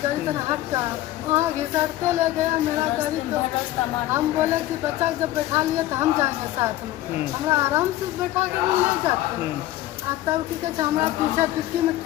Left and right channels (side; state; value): right; quieter; 15.1 dB